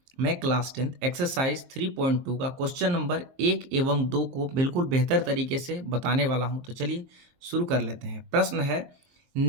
मैं क्लास 10 एक्सरसाइज 3.2 का क्वेश्चन नंबर 1 एवं 2 को बिल्कुल बेहतर तरीके से बताने वाला हूं। तो चलिए शुरू कर लेते हैं। प्रश्न है,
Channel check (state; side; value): late; left; 23 ms